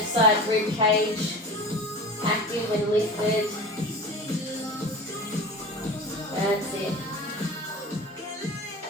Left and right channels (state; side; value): normal; both; correlation 0.34